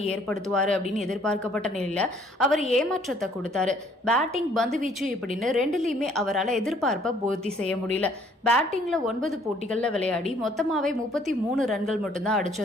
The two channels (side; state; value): both; normal; correlation 0.61